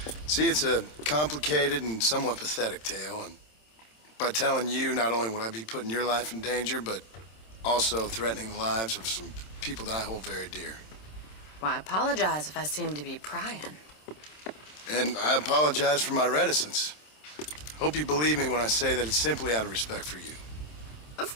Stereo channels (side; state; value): right; late; 27 ms